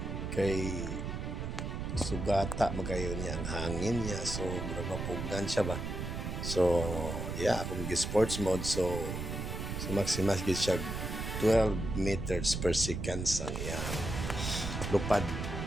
kay sugata magayon niya ang hangin niya, so murag mapugnan siya ba. So yeah, akong sports mode, so maximas gid siya 12 meters per second ang iyang lupad.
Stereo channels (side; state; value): right; noise; rumble, 4 dB below the sound